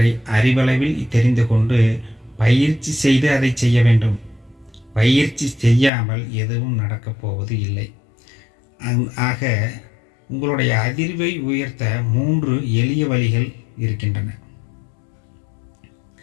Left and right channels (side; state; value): right; drops out; at 5.9 s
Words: அறிவளவில் தெரிந்து கொண்டு பயிற்சி செய்து அதை செய்ய வேண்டும். பயிற்சி செய்யாமல் எதுவும் நடக்கப் போவது இல்லை. ஆக உங்களுடைய அதிர்வை உயர்த்த 3 எளிய வழிகள் இருக்கின்றன.